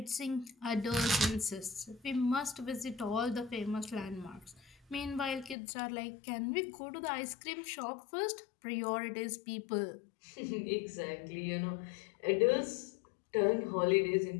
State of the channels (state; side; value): drops out; right; at 5.6 s